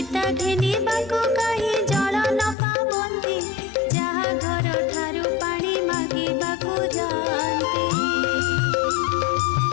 घेनिबाको कही जल न पाबंती जहा घर ठारू पानी मागिबाको जाती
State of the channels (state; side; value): drops out; right; at 2.6 s